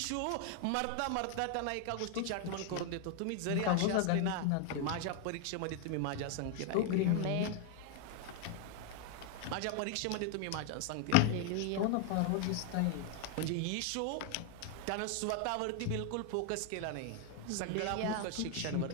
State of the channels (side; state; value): both; different; correlation 0.00